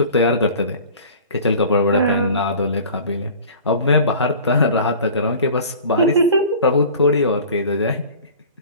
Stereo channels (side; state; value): both; inverted; correlation -0.43